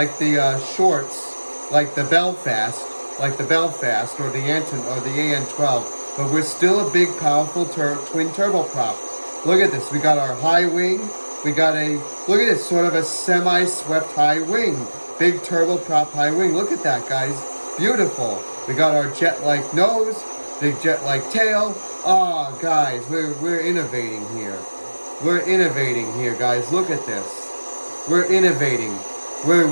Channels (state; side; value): inverted; both; correlation -1.00